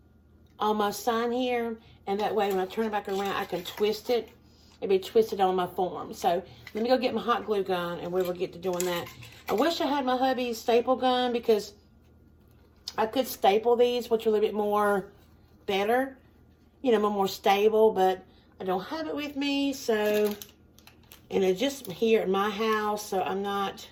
on my sign here. And that way when I turn it back around, I can twist it. It'll be twisted on my form. So let me go get my hot glue gun and we will get to doing that. I wish I had my hubby's staple gun because I could staple these, which are a little bit more better. You know, more stable, but I don't have it with me, so... And it's just here at my house, so I'm not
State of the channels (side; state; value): both; identical; correlation 1.00